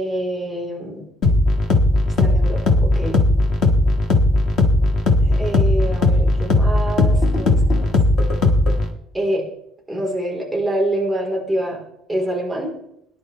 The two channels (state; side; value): normal; both; correlation 0.70